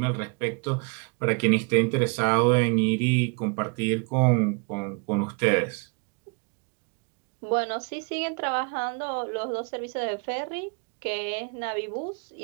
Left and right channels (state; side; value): quieter; left; 34.2 dB